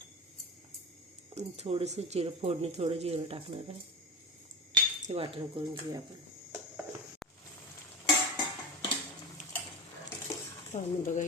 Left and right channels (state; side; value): normal; both; correlation 0.26